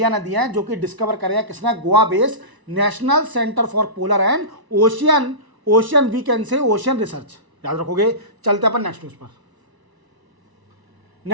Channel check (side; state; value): left; late; 1.0 ms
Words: ने दिए हैं, जो कि डिस्कवर करे हैं किसने, Goa based national centre for polar and ocean we can say ocean research. याद रखोगे। चलते अपन नेक्स्ट न्यूज पर।